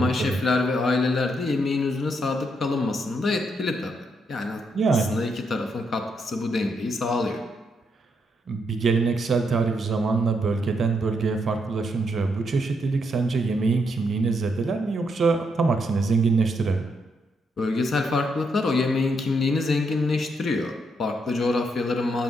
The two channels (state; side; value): normal; both; correlation 0.78